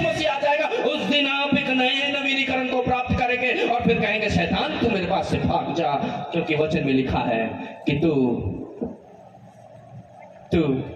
मसीह आ जाएगा, उस दिन आप एक नए नवीनीकरण को प्राप्त करेंगे और फिर कहेंगे शैतान तू मेरे पास से भाग जा, क्योंकि वचन में लिखा है कि तू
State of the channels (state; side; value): identical; both; correlation 1.00